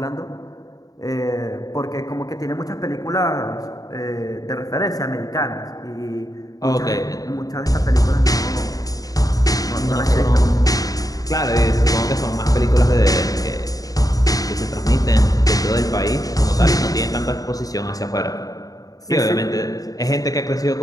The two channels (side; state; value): right; late; 0.18 ms